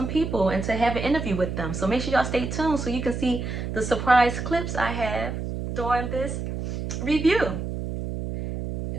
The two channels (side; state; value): right; noise; hum, 5 dB below the sound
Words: people and to have an interview with them. So make sure y'all stay tuned so you can see the surprise clips I have during this review.